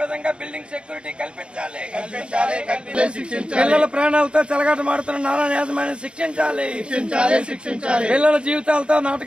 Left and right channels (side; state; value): left; late; 0.056 ms